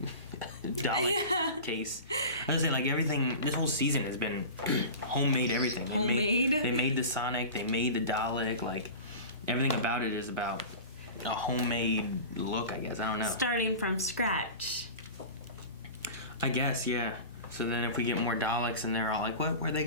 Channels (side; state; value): both; inverted; correlation -0.33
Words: Dalek case. I was saying, like, everything, this whole season has been homemade everything. Homemade? They made the Sonic, they made the Dalek, like, everything about it is about a homemade look, I guess. I don't know. Starting from scratch. I guess, yeah. So then if we get more Daleks and they're all like, what? Where'd they